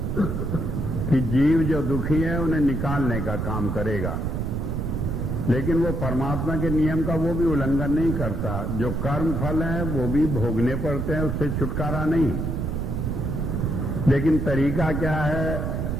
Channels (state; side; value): noise; right; rumble, 1 dB below the sound